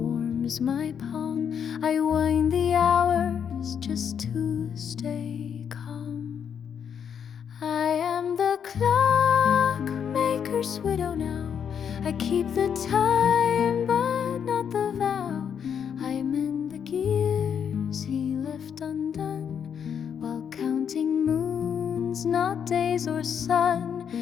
my palm. I wind the hours just to stay calm. I am the clockmaker's widow now. I keep the time but not the vow. I mend the gears he left undone, while counting moons, not days or sun.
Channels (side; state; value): right; quieter; 7.8 dB